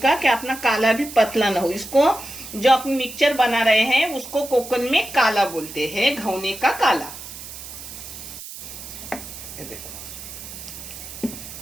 कि अपना काला भी पतला ना हो। इसको जो अपन मिक्सचर बना रहे हैं उसको कोकन में काला बोलते हैं, घौने का काला। ये देखो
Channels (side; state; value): right; noise; hiss, 12 dB below the sound